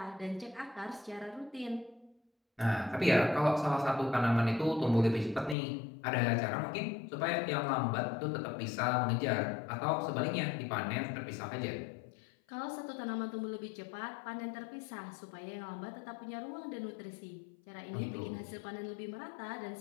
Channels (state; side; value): drops out; right; at 5.6 s